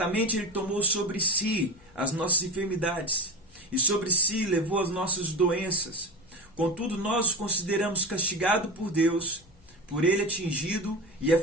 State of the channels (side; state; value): left; noise; hum, 29 dB below the sound